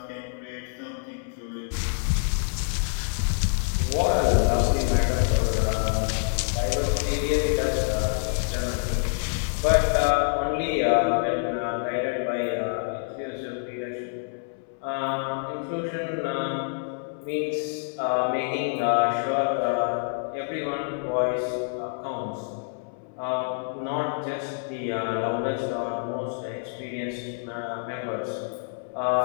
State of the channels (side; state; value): right; silent; 60 dB below the other